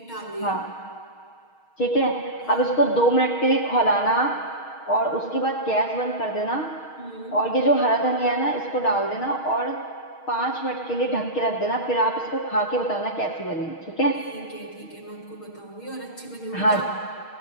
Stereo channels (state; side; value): late; right; 6.4 ms